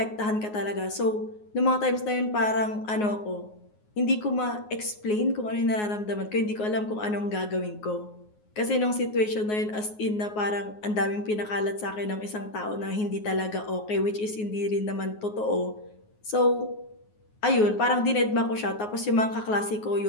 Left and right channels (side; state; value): right; late; 9.5 ms